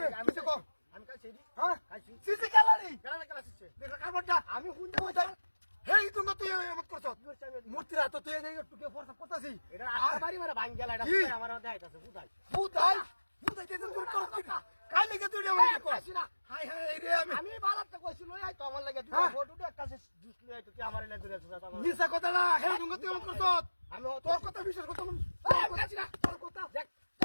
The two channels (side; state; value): both; inverted; correlation -1.00